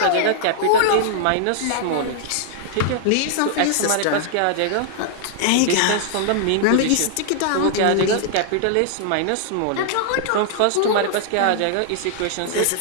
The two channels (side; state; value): both; different; correlation -0.01